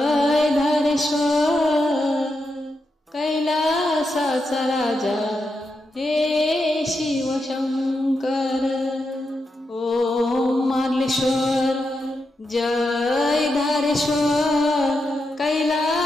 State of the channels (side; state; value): both; normal; correlation 0.86